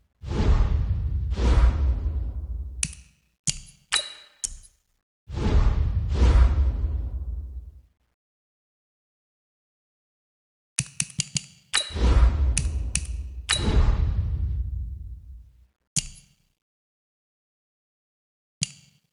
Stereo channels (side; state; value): both; identical; correlation 1.00